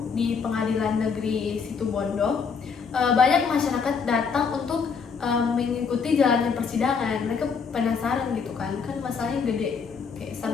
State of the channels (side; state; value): right; quieter; 5.7 dB